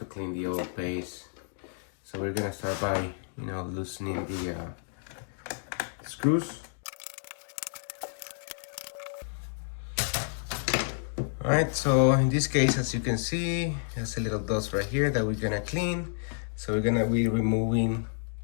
clean the old paste. So we're gonna start by loosening the screws. Alright, so in this case, as you can see, there's a little dust right here that we're gonna clean. So we're gonna be removing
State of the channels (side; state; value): right; silent; digital silence